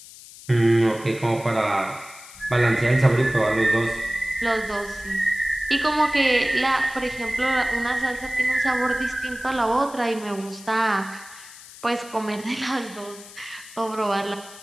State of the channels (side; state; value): left; noise; hiss, 18 dB below the sound